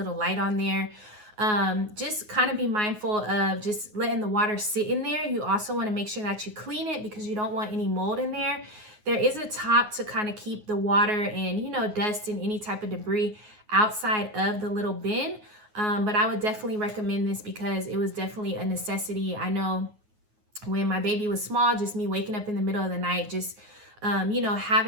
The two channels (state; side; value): late; left; 9.5 ms